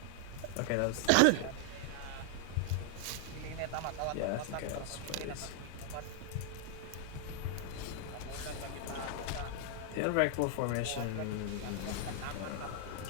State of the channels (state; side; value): different; both; correlation 0.00